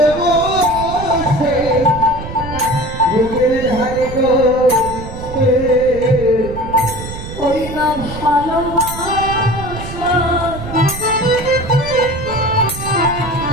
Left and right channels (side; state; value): right; noise; rumble, 10 dB below the sound